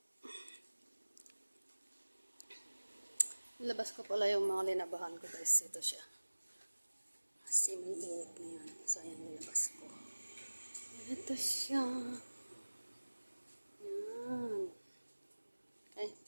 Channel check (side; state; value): both; inverted; correlation -1.00